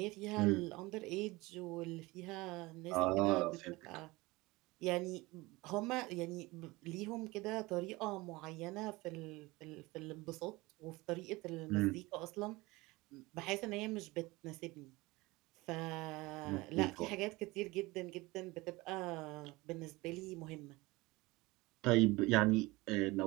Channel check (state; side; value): quieter; left; 21.8 dB